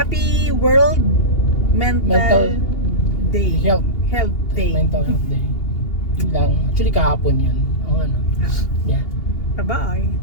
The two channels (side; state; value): right; late; 2.8 ms